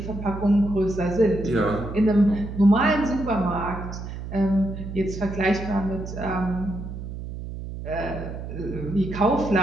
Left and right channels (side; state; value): right; noise; hum, 8 dB below the sound